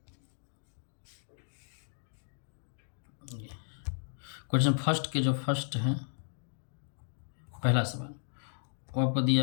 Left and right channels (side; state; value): right; silent; digital silence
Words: क्वेश्चन फर्स्ट के जो फर्स्ट है, पहला सवाल वो आपको